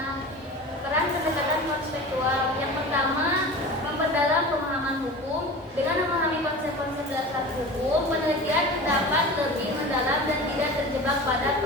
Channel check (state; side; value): normal; both; correlation 0.34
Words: peran pendekatan konseptual yang pertama, memperdalam pemahaman hukum. Dengan memahami konsep-konsep dasar hukum, penelitian dapat lebih mendalam dan tidak terjebak pada